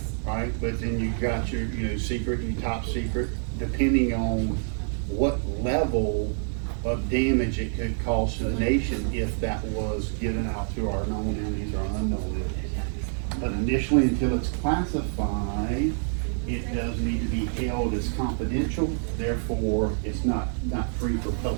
But then you've got your, secret and top secret, depending on what level of damage it could cause to the nation if that was given out to our known enemies or unknown enemies. But initially, until it's classified, it does need to be held as confidential, therefore it's not free for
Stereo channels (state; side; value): silent; left; 60 dB below the other